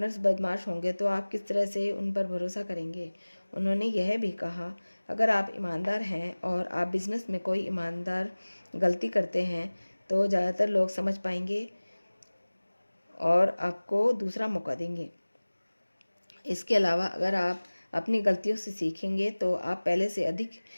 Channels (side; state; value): both; inverted; correlation -1.00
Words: बदमाश होंगे तो आप किस तरह से उन पर भरोसा करेंगे। उन्होंने यह भी कहा, अगर आप ईमानदार हैं और आप बिजनेस में कोई ईमानदार गलती करते हैं तो ज़्यादातर लोग समझ पाएंगे और आपको दूसरा मौका देंगे। इसके अलावा अगर आप अपनी गलतियों से सीखेंगे तो आप पहले से अधिक